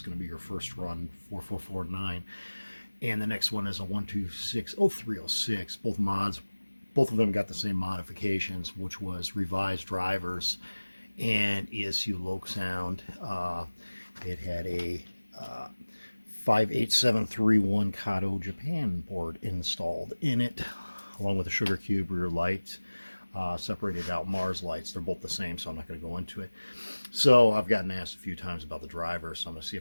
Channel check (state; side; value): inverted; both; correlation -1.00